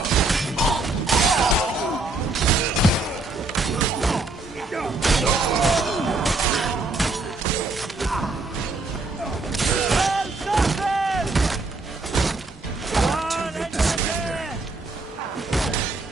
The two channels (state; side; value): quieter; left; 3.3 dB